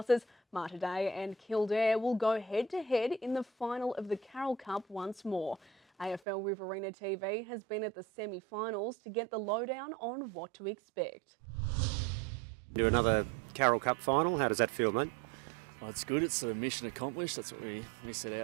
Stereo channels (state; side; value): drops out; left; at 6.2 s